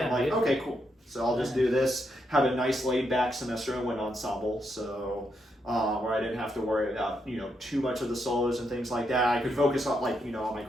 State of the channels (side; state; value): both; normal; correlation 0.80